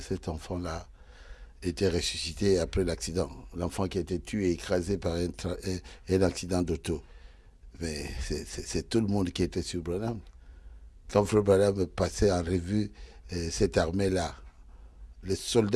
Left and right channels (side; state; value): both; identical; correlation 1.00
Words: enfant-là était ressuscité après l'accident. L'enfant qui a été tué et écrasé par un accident d'auto. Mais c'est tout le monde qui était sur Branham. Quand Frère Branham passait en revue cette armée-là, les